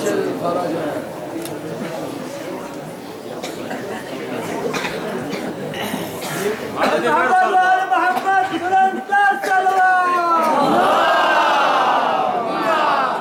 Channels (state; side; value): identical; both; correlation 1.00